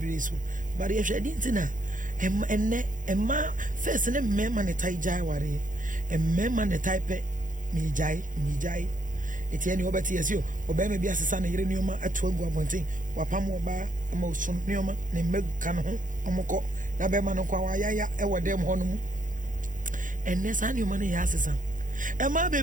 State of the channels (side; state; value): left; late; 0.38 ms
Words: so bare yenhwe edenti na emma first ne mema ne tai jai ware emma ne type mi jai etieni obeti yesio obema bi asesa na yire nioma atu agu abonten wapam oba ama osun nioma ne meguka no ho omoko na bema no kwa wayaya ewodem ho no mu enne sa nioma ne ya asesa ema